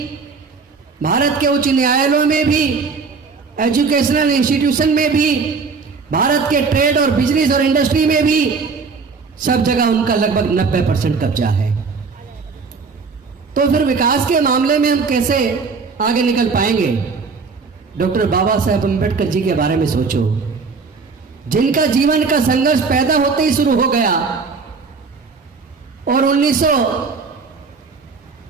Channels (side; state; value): left; quieter; 4.8 dB